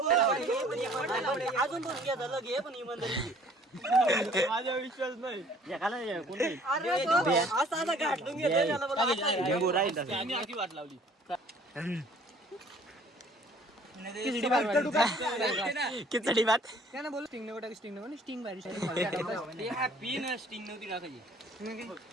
अजून पण घ्या झालं घे पण इमानदारी माझा विश्वास नाही असा घाटून वाट लावली खिचडी भात त्यानं बोल स्टिंग नको टाक स्टिंग नको स्टिंग भारी पिन स्टिंग नव्हती टाकायची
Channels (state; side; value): normal; both; correlation 0.55